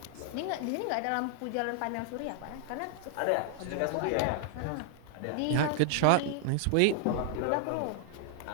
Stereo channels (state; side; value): different; both; correlation 0.00